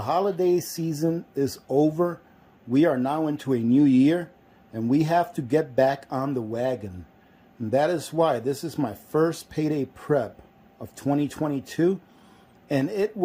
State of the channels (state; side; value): identical; both; correlation 1.00